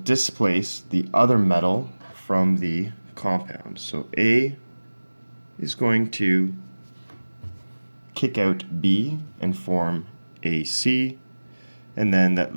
the other metal from the compound. So A is going to kick out B and form AC, and then that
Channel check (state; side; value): inverted; both; correlation -1.00